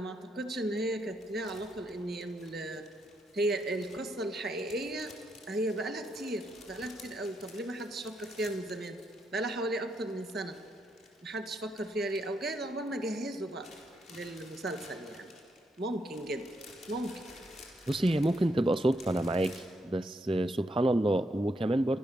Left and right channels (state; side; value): normal; both; correlation 0.78